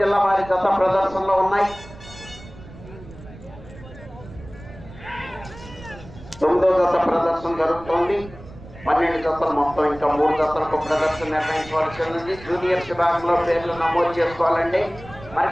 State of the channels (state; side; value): noise; right; rumble, 17 dB below the sound